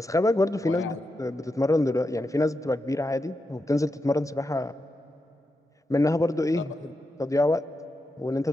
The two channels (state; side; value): normal; both; correlation 0.87